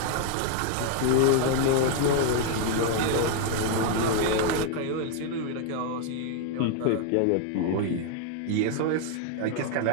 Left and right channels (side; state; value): both; different; correlation 0.00